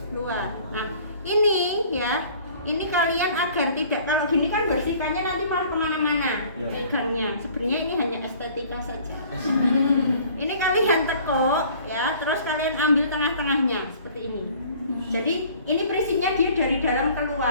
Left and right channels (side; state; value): both; inverted; correlation -0.52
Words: luar. Nah, ini ya, ini kalian agar tidak, kalau gini kan bersihkannya nanti malah kemana-mana pegangnya. Sebenarnya ini hanya estetika saja. Ini kalian tekuk ya, terus kalian ambil tengah-tengahnya seperti ini. Jadi ini prinsipnya dia dari dalam